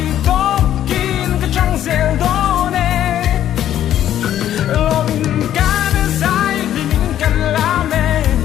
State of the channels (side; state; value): right; quieter; 11.4 dB